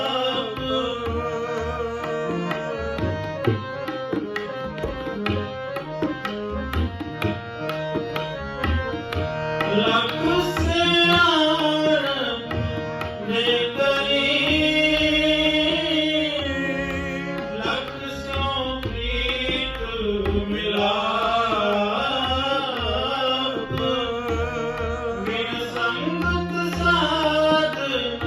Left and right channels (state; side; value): identical; both; correlation 1.00